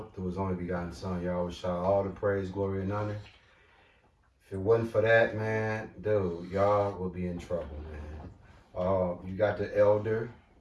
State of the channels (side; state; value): both; identical; correlation 1.00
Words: through His only begotten Son, Yahweh Shah, all the praise, glory, and honor. If it wasn't for that, man, dude, y'all will be in trouble, man. You got the elder,